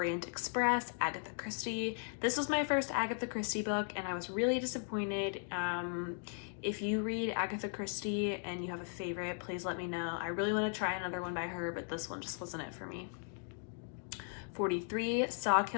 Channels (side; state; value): right; silent; 53 dB below the other